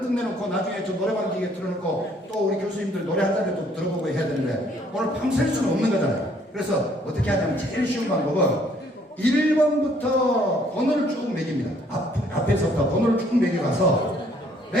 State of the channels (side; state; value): both; normal; correlation 0.63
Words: 끝내놓고 나중에 저 노래방 기계 틀어놓고 또 우리 교수님들 노래 한 잔을 또 들어보고 해야 되는데 오늘 밤샐 수는 없는 거잖아요. 그래서 어떻게 하냐면 제일 쉬운 방법은 1번부터 번호를 쭉 매깁니다. 앞에서부터 번호를 쭉 매겨가서